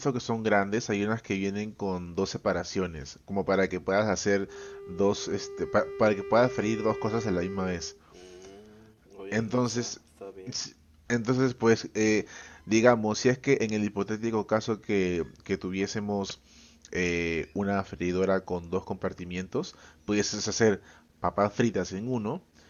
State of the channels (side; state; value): both; identical; correlation 1.00